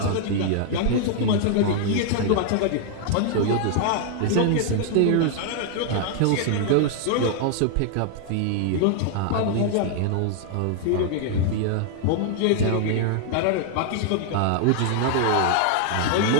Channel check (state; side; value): different; both; correlation 0.00